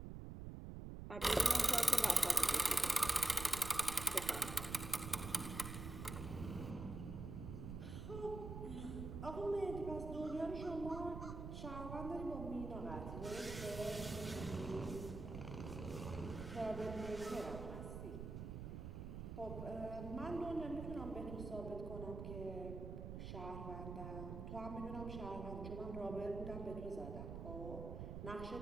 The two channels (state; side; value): noise; right; rumble, 7 dB below the sound